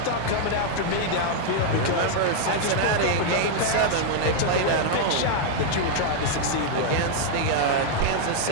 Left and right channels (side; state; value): both; different; correlation 0.00